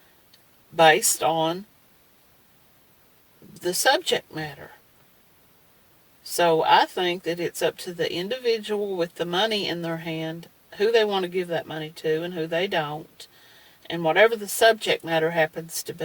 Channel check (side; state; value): both; identical; correlation 1.00